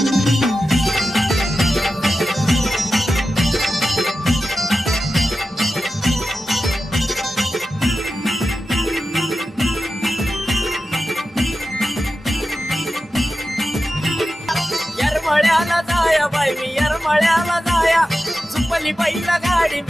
येरमळ्याला जाया बाई मी येरमळ्याला जाया चुपली पहिला गाडी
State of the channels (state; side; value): normal; both; correlation 0.92